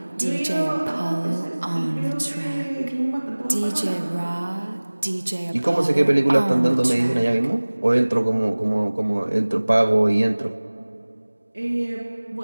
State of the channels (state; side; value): inverted; both; correlation -1.00